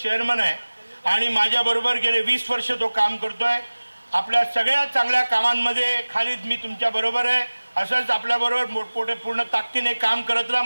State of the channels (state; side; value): inverted; both; correlation -1.00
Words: आहे आणि माझ्याबरोबर गेले 20 वर्ष तो काम करतोय। आपल्या सगळ्या चांगल्या कामांमध्ये खालिद मी तुमच्या बरोबर आहे, असंच आपल्याबरोबर मोठमोठे पूर्ण ताकदीने काम करत राहा,